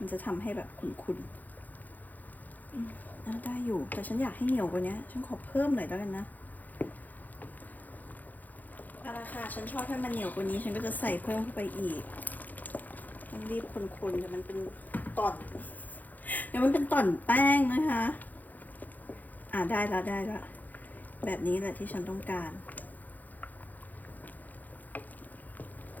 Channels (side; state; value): right; late; 0.083 ms